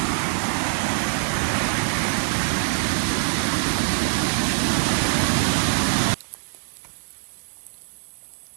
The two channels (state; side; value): silent; left; digital silence